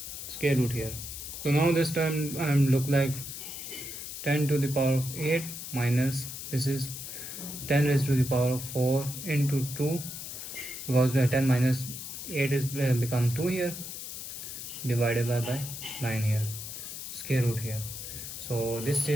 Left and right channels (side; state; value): left; noise; hiss, 8 dB below the sound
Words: square root here. So now this term look like 10 to the power of 8 minus this is 10 raised to the power of 4 into 2, because the 10 minus 8 is become 2 here divided by 9 here, square root here. So this